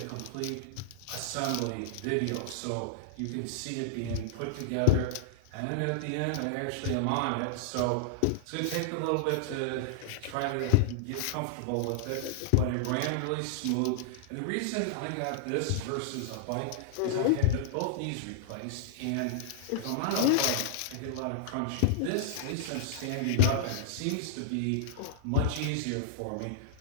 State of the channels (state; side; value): different; both; correlation -0.01